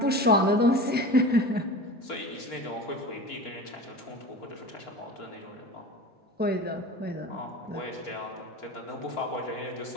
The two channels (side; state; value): both; normal; correlation 0.33